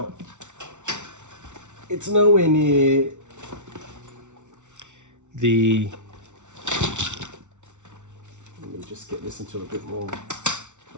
it's nowhere near the, let me just get this into a bit more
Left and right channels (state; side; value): late; left; 0.85 ms